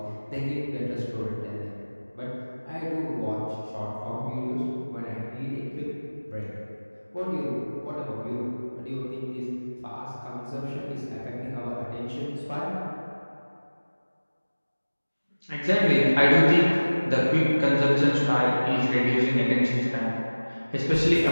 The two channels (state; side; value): inverted; both; correlation -1.00